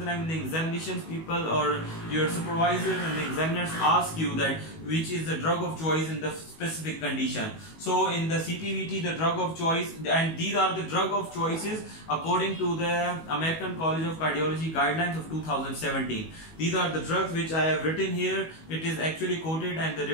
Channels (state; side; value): late; right; 19 ms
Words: time in the examinations people or your supervisor and the examiners ask you that which is the drug of choice in the specific condition. So in the CPVT the drug of choice, and these are the drug of choices according to the American College of Cardiology guidelines of 2017. These are the drugs which I have written here. It is actually quoted, and the